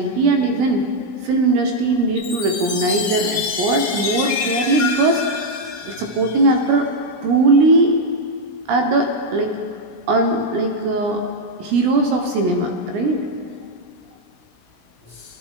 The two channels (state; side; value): late; left; 17 ms